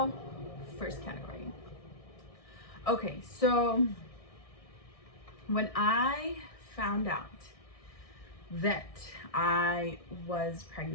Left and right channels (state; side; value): late; right; 1.6 ms